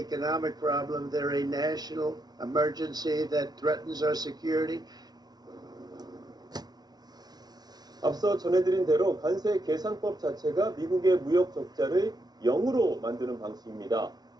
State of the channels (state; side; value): late; left; 0.19 ms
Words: problem. They're a national emergency that threatens our security. 앞서 전해드린 대로 관세 계산법 자체가 미국의 무역 적자를 0으로 만드는 방식입니다.